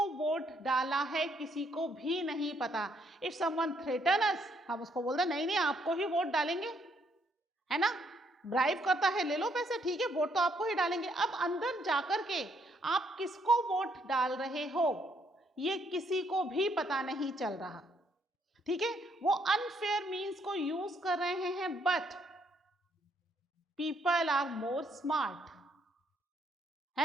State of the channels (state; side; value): normal; both; correlation 0.71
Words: वोट डाला है किसी को भी नहीं पता। If someone threaten us, हम उसको बोलते नहीं नहीं आपको ही वोट डालेंगे, है ना, ब्राइब करता है, ले लो पैसे, ठीक है, वोट तो आपको ही डालेंगे। अब अंदर जाकर के आप किसको वोट डाल रहे हो ये किसी को भी पता नहीं चल रहा। ठीक है, वो अनफेयर मीन्स को यूज कर रहे हैं, but people are more smart,